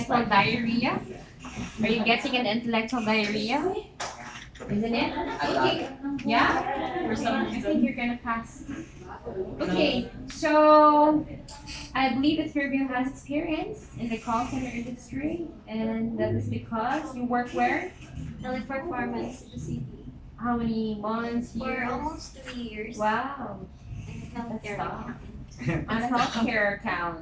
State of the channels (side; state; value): both; identical; correlation 1.00